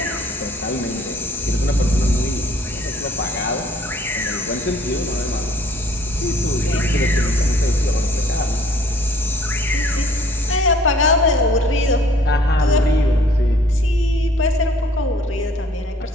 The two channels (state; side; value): normal; both; correlation 0.57